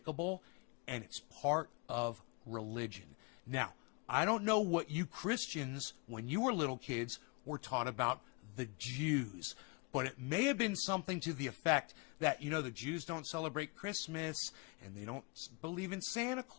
and it's part of religion. Now, I don't know what you Christians, when you were little kids, were taught about the Jews, but it may have been something to the effect that, you know, the Jews don't celebrate Christmas, and they don't believe in Santa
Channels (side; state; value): right; quieter; 30.4 dB